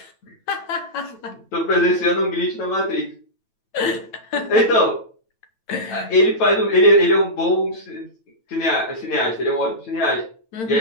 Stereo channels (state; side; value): late; right; 9.0 ms